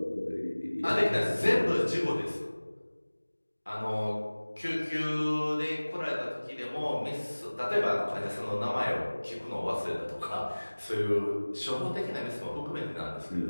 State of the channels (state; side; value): inverted; both; correlation -1.00